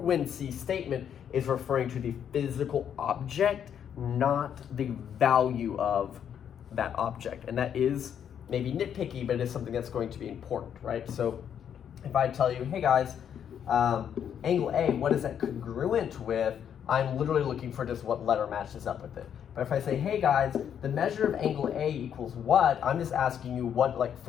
statement is referring to the physical object, not the value of that object. And that is maybe nitpicky, but it is something that's going to be important, right? So if I tell you, hey guys, angle A, what is that congruent with? I'm literally looking for just what letter matches up with it. But if I say, hey guys, the measure of angle A equals what? I'm just asking you what, like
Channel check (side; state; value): right; quieter; 8.7 dB